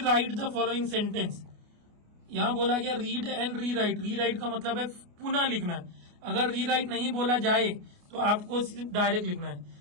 right the following sentence, यहाँ बोला गया रीड एंड री राइट, री राइट का मतलब है पुनः लिखना है। अगर री राइट नहीं बोला जाए तो आपको सिर्फ डायरेक्ट लिखना है,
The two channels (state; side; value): late; left; 29 ms